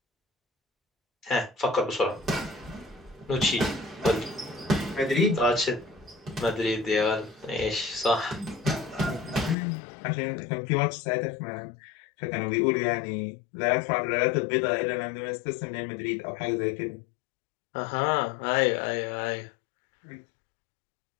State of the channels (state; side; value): drops out; right; at 9.6 s